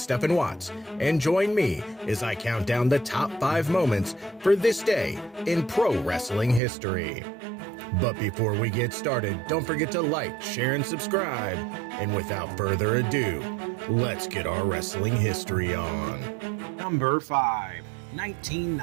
Watts, and join me as I count down the top 5 moments for this day in pro wrestling history. But before we get started, don't forget to like, share, and subscribe. And without further ado, let's get our wrestling history on. Number 5,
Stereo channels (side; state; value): left; drops out; at 6.6 s